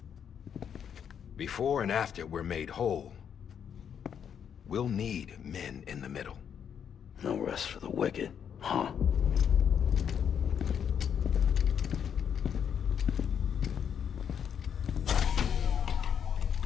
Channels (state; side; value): quieter; right; 8.1 dB